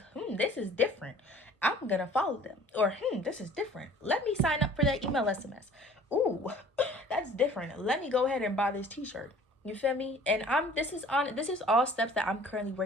this is different. I'm gonna follow them. Or, this is different. Let me sign up for that email SMS. Ooh, that's different. Let me go ahead and buy this t-shirt. You feel me? And this is all steps that I'm currently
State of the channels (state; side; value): normal; both; correlation 0.50